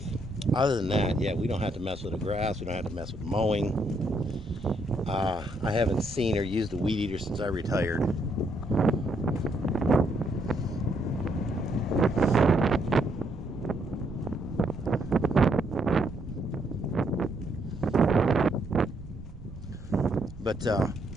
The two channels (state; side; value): noise; right; rumble, 15 dB below the sound